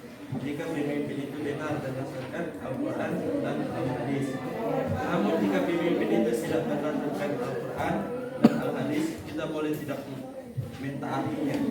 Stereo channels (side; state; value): both; identical; correlation 1.00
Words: jika pemimpin itu benar berdasarkan Al-Quran dan Al-Hadis. Namun jika pemimpin itu tidak berdasarkan Al-Quran dan Al-Hadis, kita boleh tidak mentaatinya.